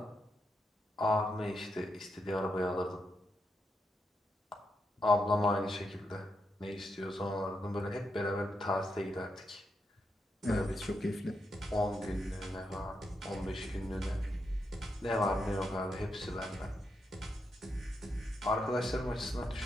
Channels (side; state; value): both; normal; correlation 0.83